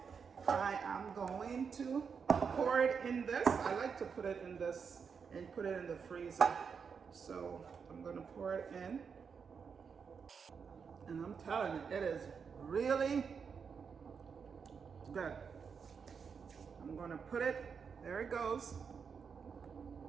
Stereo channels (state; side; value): quieter; left; 6.1 dB